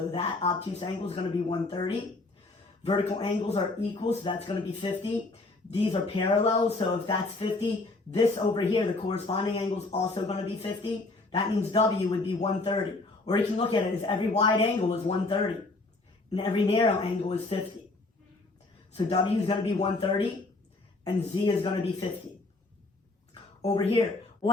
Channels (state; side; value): quieter; right; 3.2 dB